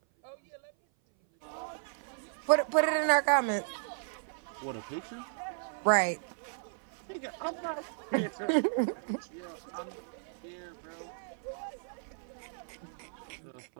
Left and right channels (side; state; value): left; silent; 55 dB below the other